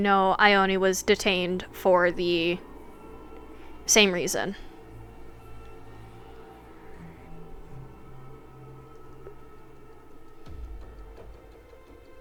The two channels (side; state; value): both; identical; correlation 1.00